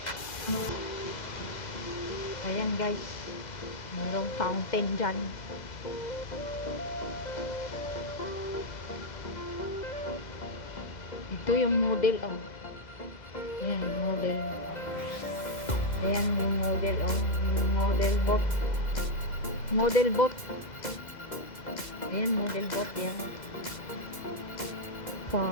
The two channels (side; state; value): right; late; 2.0 ms